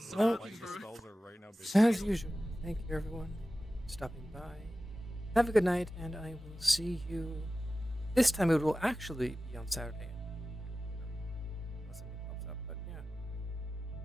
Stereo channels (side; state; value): both; normal; correlation 0.95